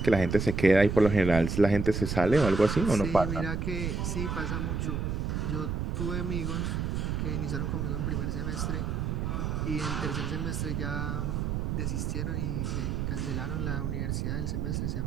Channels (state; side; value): noise; right; rumble, 1 dB below the sound